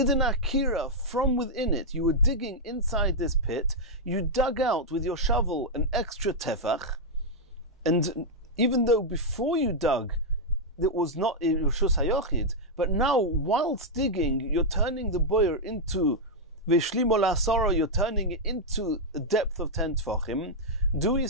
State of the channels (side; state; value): both; normal; correlation -0.04